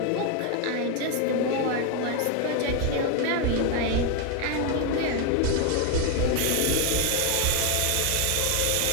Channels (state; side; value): different; both; correlation 0.01